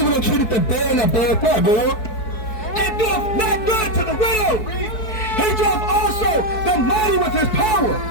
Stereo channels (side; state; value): right; late; 4.6 ms